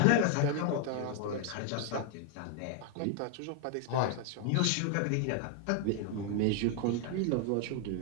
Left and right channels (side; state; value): both; different; correlation 0.01